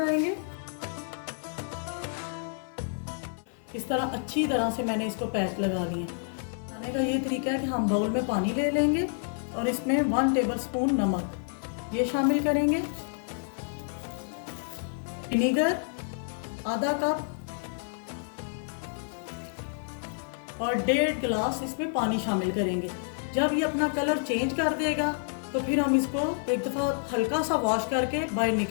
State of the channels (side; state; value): right; silent; 55 dB below the other